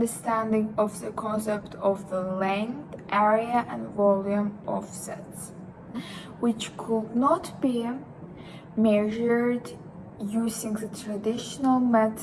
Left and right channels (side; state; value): both; identical; correlation 1.00